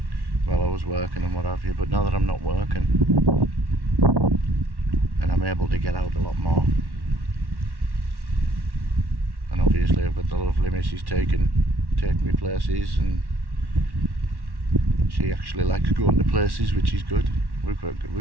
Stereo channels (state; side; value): late; left; 1.1 ms